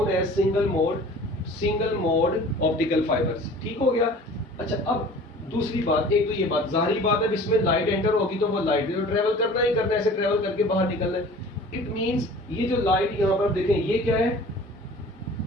as single mode optical fibers. ठीक हो गया? अच्छा, अब दूसरी बात, एक तो ये बात जाहिर बात है, इसमें लाइट एंटर होगी तो वो लाइट तो ट्रेवल करना ही करना है, ऐसे ट्रेवल करके बाहर निकलना है। इट मींस ये जो लाइट यहाँ पर देखें, ये क्या है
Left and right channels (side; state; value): both; normal; correlation 0.45